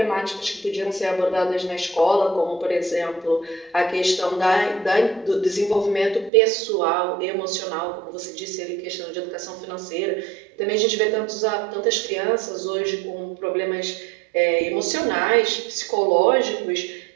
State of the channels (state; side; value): drops out; left; at 6.3 s